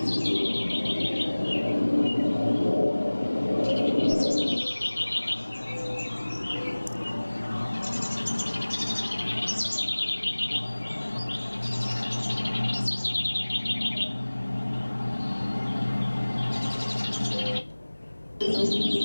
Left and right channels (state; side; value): inverted; both; correlation -1.00